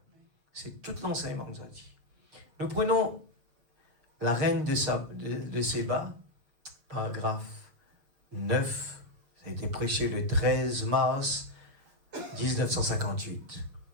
C'est tout l'enseignement que nous a dit. Nous prenons la reine de Séba, paragraphe 9. Ça a été prêché le 13 mars 1958.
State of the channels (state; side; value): late; left; 6.8 ms